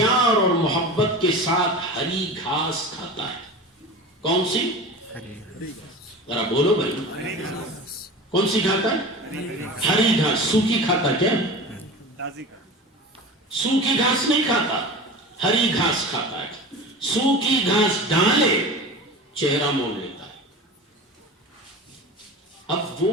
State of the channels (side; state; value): both; normal; correlation 0.33